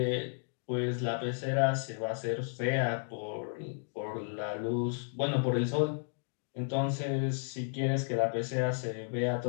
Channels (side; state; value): right; silent; digital silence